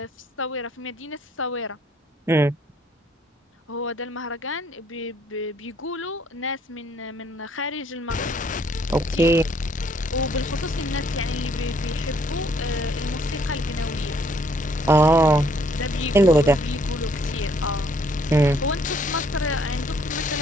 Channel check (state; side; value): normal; both; correlation 0.65